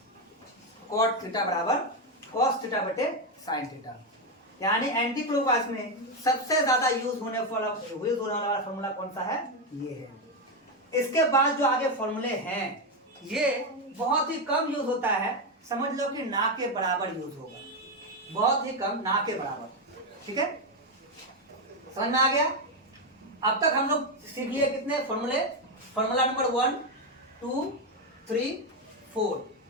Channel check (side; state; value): both; normal; correlation 0.07